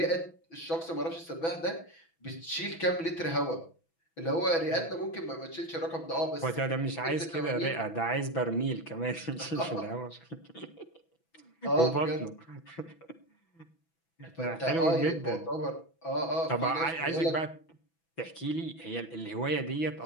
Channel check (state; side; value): late; right; 6.0 ms